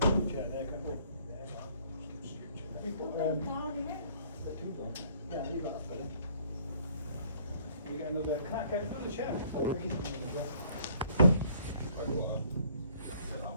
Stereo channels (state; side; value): inverted; both; correlation -0.60